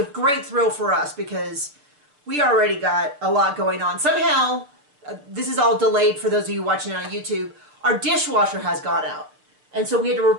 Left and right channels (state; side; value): late; left; 6.8 ms